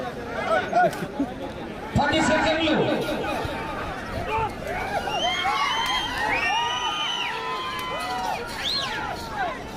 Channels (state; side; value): identical; both; correlation 1.00